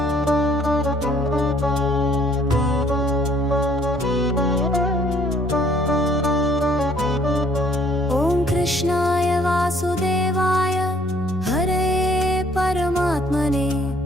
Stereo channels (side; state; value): both; normal; correlation 0.61